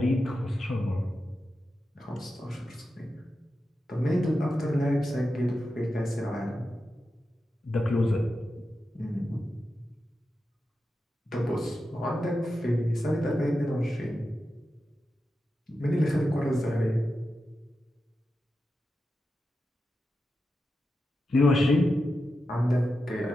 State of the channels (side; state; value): both; normal; correlation 0.90